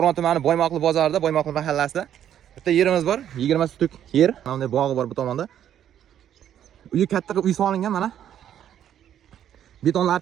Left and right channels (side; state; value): left; quieter; 10.3 dB